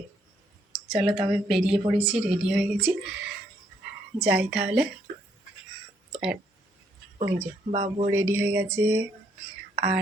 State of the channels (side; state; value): both; normal; correlation 0.71